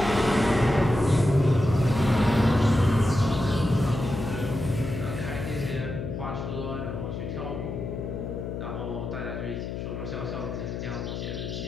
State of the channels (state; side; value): noise; left; hum, 5 dB below the sound